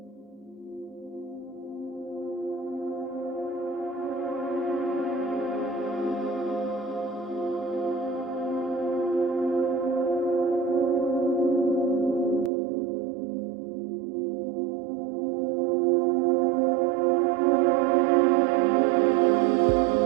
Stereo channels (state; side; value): drops out; left; at 12.5 s